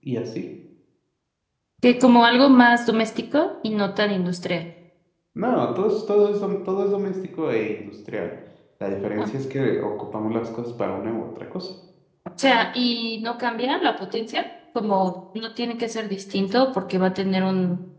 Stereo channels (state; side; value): identical; both; correlation 1.00